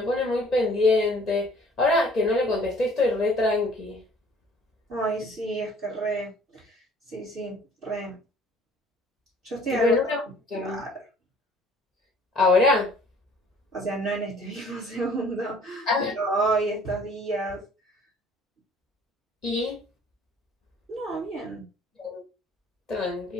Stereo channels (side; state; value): both; normal; correlation 0.55